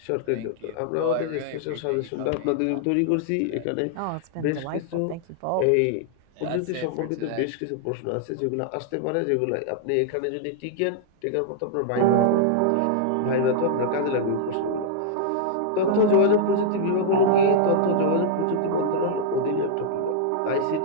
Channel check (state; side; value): different; both; correlation -0.01